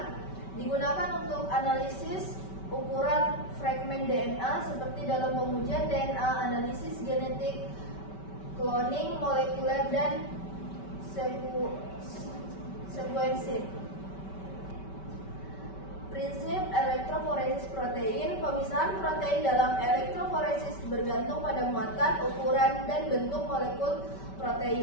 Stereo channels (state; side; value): late; right; 5.2 ms